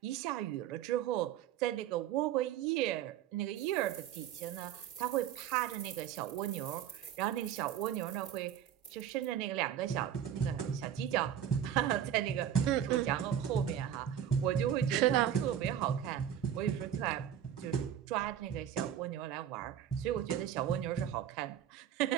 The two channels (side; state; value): left; quieter; 10.0 dB